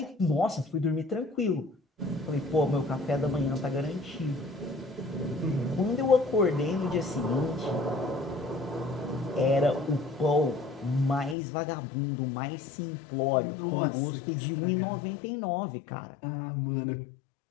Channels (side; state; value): right; drops out; at 11.4 s